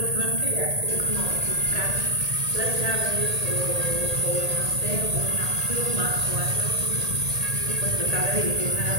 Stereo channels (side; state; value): left; late; 1.8 ms